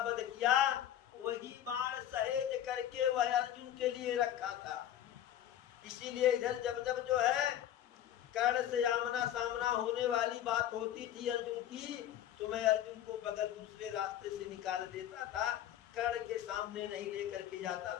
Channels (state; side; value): quieter; right; 11.4 dB